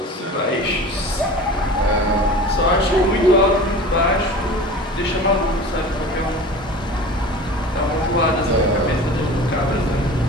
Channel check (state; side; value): normal; both; correlation 0.38